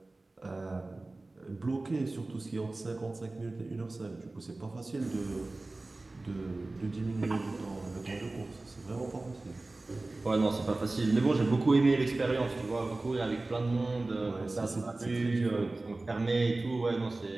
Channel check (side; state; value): left; quieter; 3.1 dB